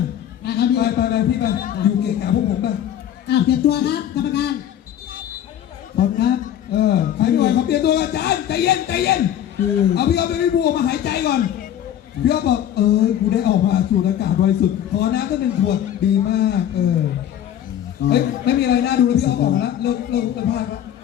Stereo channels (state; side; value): quieter; right; 10.6 dB